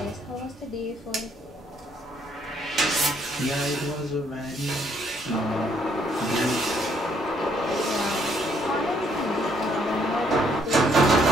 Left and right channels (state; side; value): normal; both; correlation 0.69